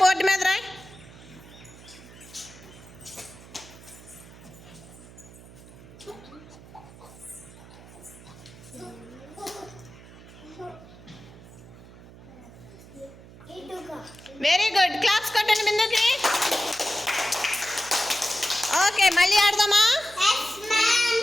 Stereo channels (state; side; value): noise; right; hum, 19 dB below the sound